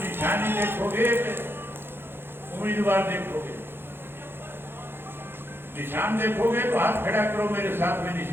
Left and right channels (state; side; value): late; left; 0.10 ms